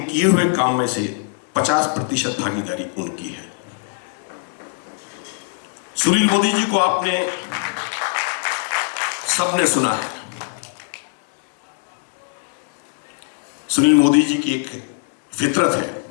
किए हुए काम में से 50% भागीदारी उनकी है। सुनील मोदी जी को आपने सबने सुना है। सुनील मोदी जी की एक फितरत है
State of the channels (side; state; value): right; silent; digital silence